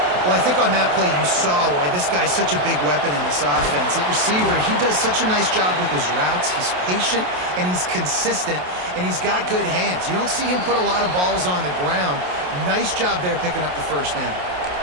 Well, I think on that play you saw why this guy's such a big weapon in this offense. At receiver, he does such a nice job with his routes. He's patient, and he's consistent, and he's got good hands. You don't see him put a lot of balls on the ground. Nice job there picking up the first down.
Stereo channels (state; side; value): late; left; 28 ms